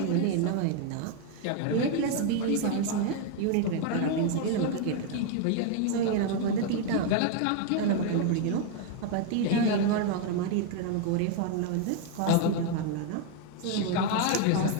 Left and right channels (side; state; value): both; different; correlation 0.01